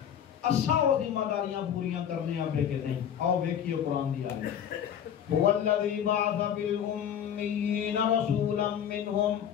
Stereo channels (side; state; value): right; quieter; 9.1 dB